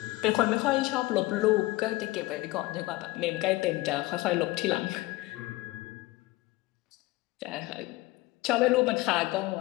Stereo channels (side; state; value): right; quieter; 20.1 dB